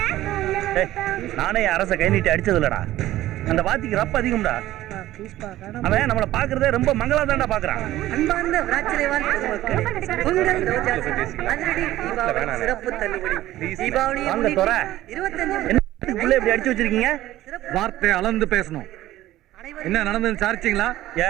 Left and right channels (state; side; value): quieter; left; 14.9 dB